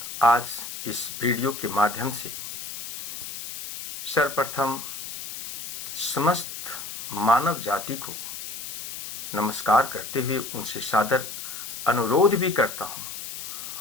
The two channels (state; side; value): noise; left; hiss, 7 dB below the sound